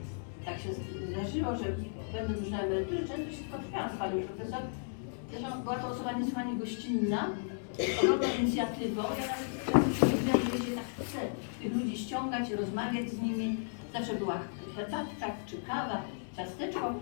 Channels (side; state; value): right; silent; digital silence